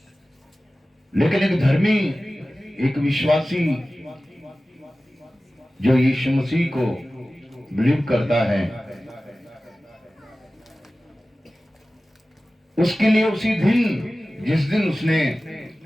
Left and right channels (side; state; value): both; normal; correlation 0.96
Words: लेकिन एक धर्मी, एक विश्वासी जो यीशु मसीह को बिलीव करता है, उसके लिए उसी दिन, जिस दिन उसने